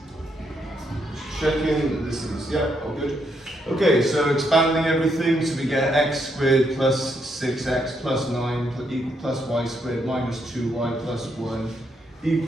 checking this is, yeah, all good. Okay, so expanding everything, so we get x squared plus 6x plus 9 plus y squared minus 2y plus 1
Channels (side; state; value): both; normal; correlation 0.77